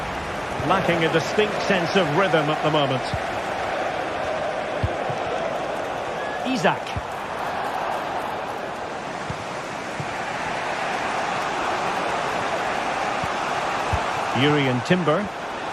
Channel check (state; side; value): identical; both; correlation 1.00